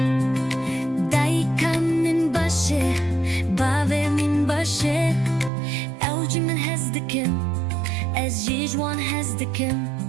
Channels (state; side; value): drops out; left; at 5.5 s